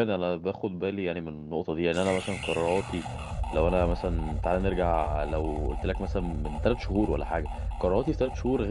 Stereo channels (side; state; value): both; identical; correlation 1.00